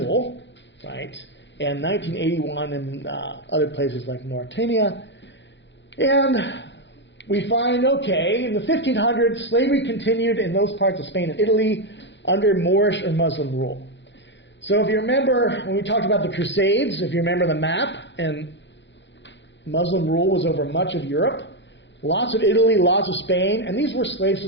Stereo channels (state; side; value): late; right; 0.52 ms